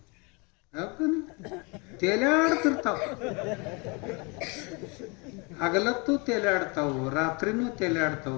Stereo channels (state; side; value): quieter; right; 30.4 dB